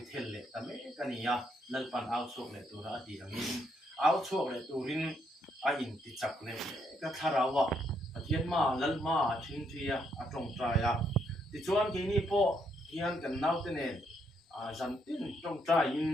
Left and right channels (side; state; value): both; normal; correlation 0.74